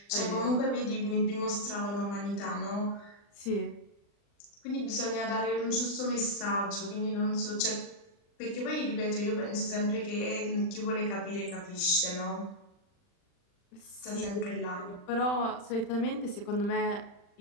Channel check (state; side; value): late; right; 40 ms